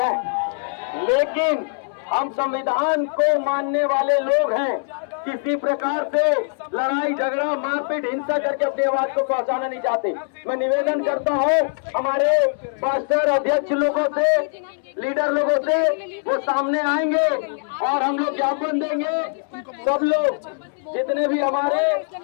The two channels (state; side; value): silent; right; 64 dB below the other